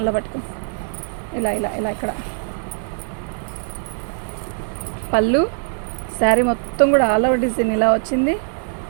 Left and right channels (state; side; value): silent; left; 58 dB below the other